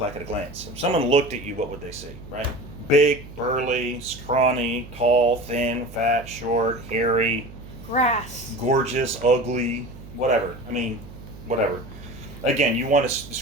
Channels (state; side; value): noise; right; hum, 16 dB below the sound